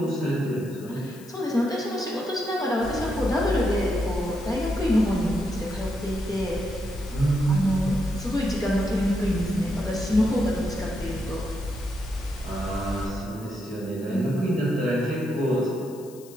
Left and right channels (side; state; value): left; noise; hiss, 22 dB below the sound